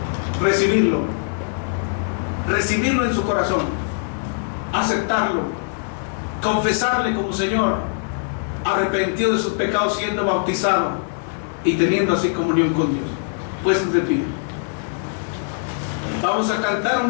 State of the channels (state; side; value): silent; right; digital silence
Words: recibirlo en su corazón, aceptarlo, confesarle como Señor, arrepentido de sus pecados, siendo bautizado y teniendo así comunión con Dios. Puestos de pie, vamos a cantar